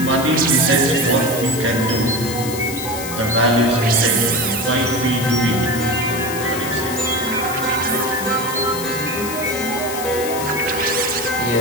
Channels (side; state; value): left; noise; hiss, 8 dB below the sound